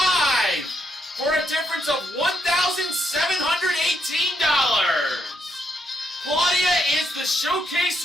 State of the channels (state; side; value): normal; both; correlation 0.77